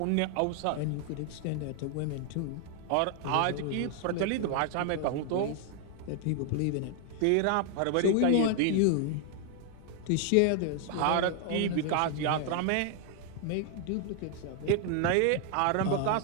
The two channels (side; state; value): both; different; correlation 0.00